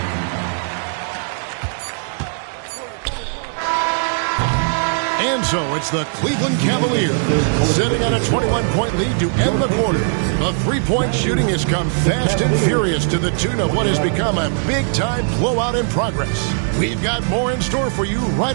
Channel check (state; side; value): silent; left; 67 dB below the other